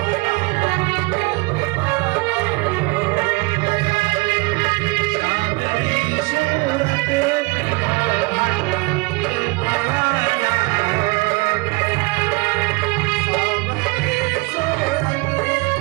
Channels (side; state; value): left; quieter; 25.6 dB